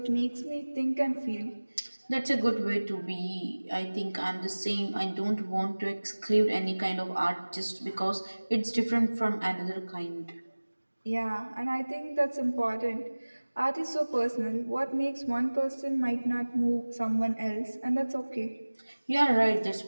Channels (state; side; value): inverted; both; correlation -1.00